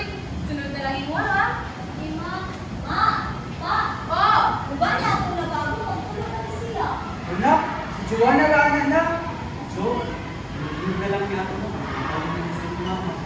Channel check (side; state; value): both; identical; correlation 1.00